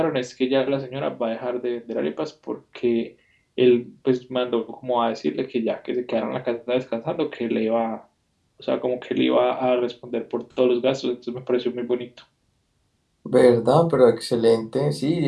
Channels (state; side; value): identical; both; correlation 1.00